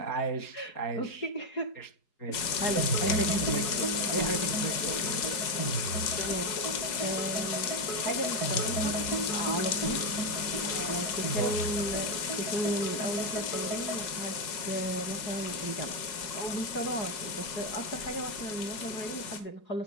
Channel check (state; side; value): late; right; 4.7 ms